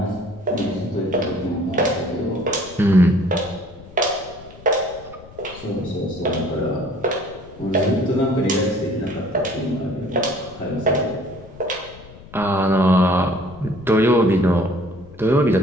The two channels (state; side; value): noise; left; rumble, 20 dB below the sound